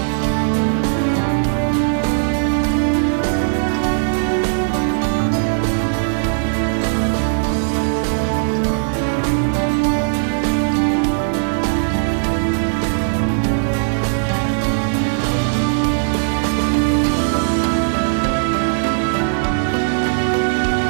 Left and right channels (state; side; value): silent; left; digital silence